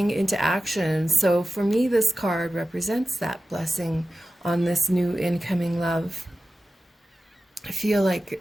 into action. So for me, this card represents that blessing on this new incoming love. I feel like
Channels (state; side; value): normal; both; correlation 0.94